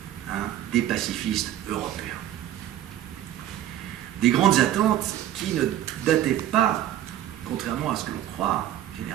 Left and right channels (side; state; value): left; quieter; 12.1 dB